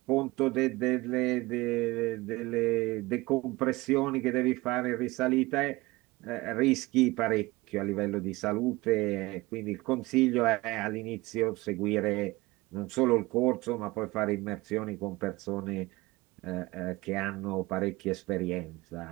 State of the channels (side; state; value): left; quieter; 21.2 dB